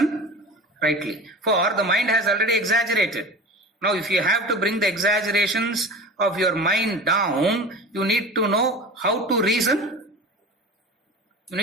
rightly. For the mind has already exaggerated. Now if you have to bring the exaggerations of your mind down, you need to know how to reason. You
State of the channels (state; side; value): normal; both; correlation 0.34